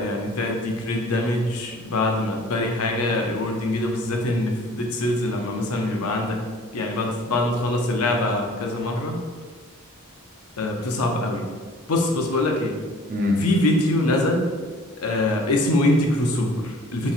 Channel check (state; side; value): normal; both; correlation 0.50